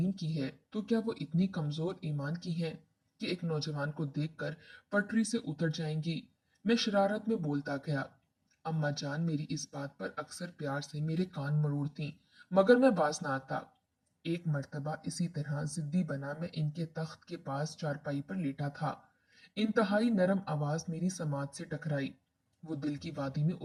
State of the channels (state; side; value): identical; both; correlation 1.00